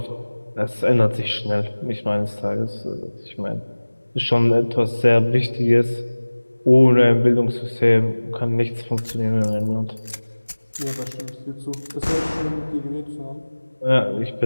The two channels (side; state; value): both; inverted; correlation -1.00